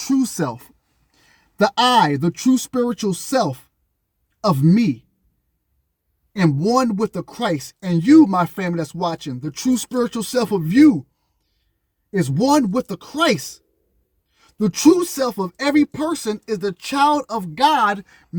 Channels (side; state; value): both; identical; correlation 1.00